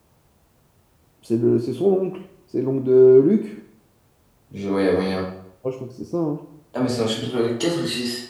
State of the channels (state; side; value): identical; both; correlation 1.00